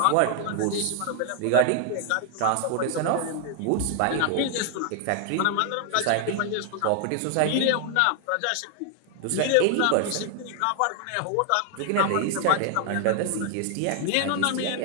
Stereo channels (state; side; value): different; both; correlation 0.00